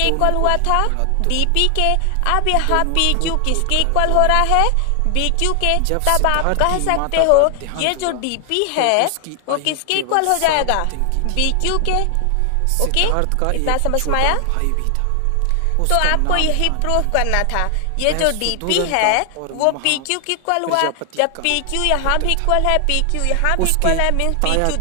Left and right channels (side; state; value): both; different; correlation 0.00